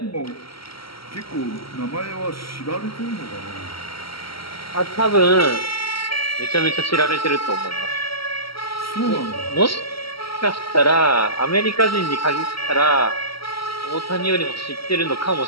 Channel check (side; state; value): right; late; 0.75 ms